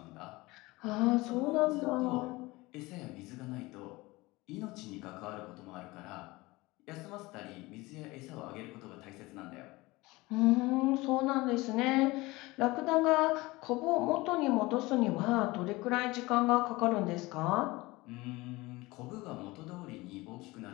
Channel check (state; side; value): quieter; right; 21.4 dB